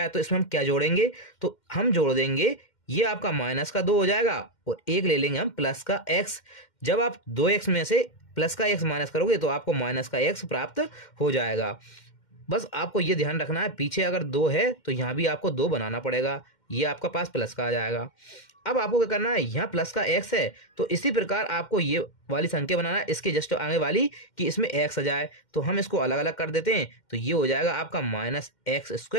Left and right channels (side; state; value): right; late; 2.1 ms